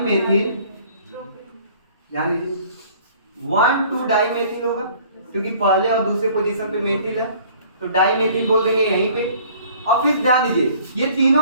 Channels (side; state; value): both; inverted; correlation -0.53